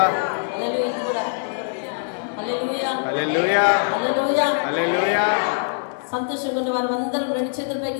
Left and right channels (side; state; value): right; silent; digital silence